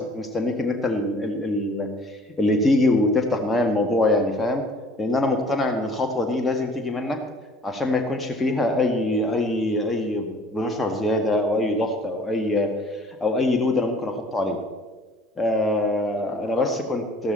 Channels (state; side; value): normal; both; correlation 0.52